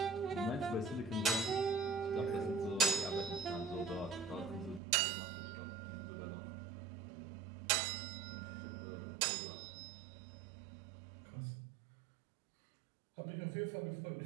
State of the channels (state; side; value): drops out; left; at 4.8 s